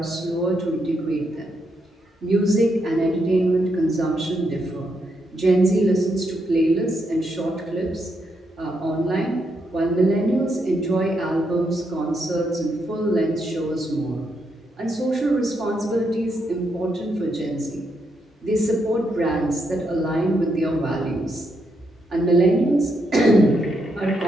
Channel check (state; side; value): normal; both; correlation 0.80